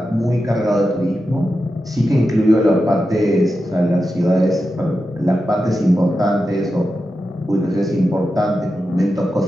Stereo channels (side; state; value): both; normal; correlation 0.90